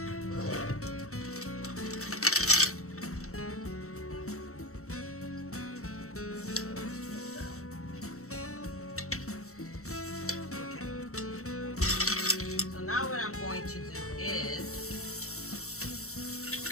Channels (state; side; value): late; right; 0.64 ms